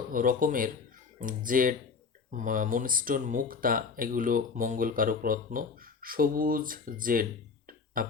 রকমের জেড, মুনস্টোন, মুক্তা, এগুলো মঙ্গলকারক রত্ন। সবুজ জেড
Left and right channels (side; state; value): right; quieter; 5.3 dB